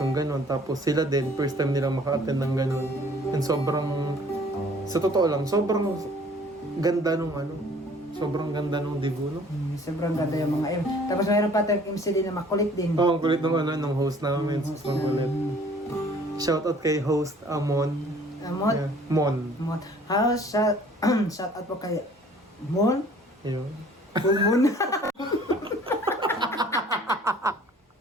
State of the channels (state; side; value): normal; both; correlation 0.54